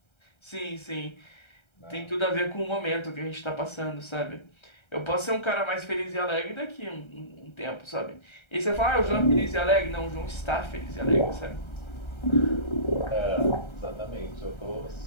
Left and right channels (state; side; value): late; right; 1.3 ms